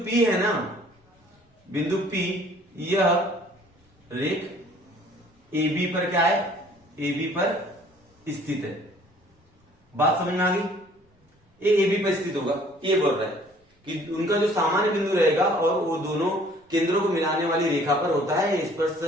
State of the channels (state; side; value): normal; both; correlation 0.56